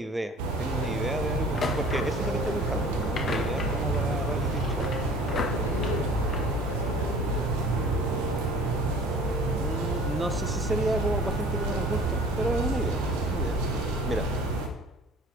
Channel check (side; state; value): both; normal; correlation 0.46